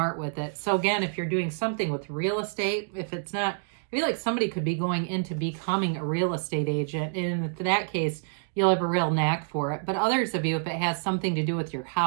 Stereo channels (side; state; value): left; silent; digital silence